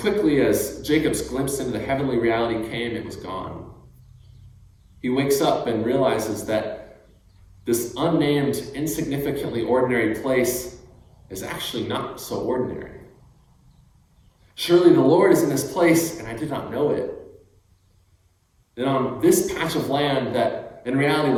as Jacob's glimpse into the heavenly reality came, it was gone. He wakes up and realizes that this unnamed, insignificantly ordinary place is actually not so ordinary. Surely the Lord is in this place, and I did not know it. And on this patch of land that in reality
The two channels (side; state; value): both; identical; correlation 1.00